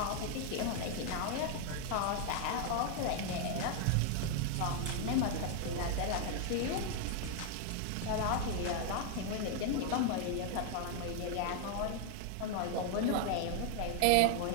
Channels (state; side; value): different; both; correlation 0.00